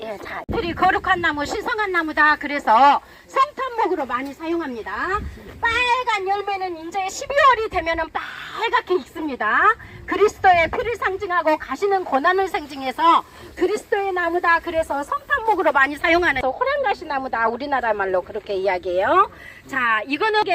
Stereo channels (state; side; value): identical; both; correlation 1.00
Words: 예, 자, 이파리 거룩한 나무, 신성한 나무다. 그래서 성탄목으로 많이 사용합니다. 빨간 열매는 이제 12월이 되면은 빨갛게 익습니다. 그리스도의 피를 상징하고 가시는 고난을 상징해서 그리스도의 나무다. 그래서 성탄목으로 많이 사용하는 호랑가시 나무다. 우리나라 말로 그렇게 이야기해요. 자, 이거는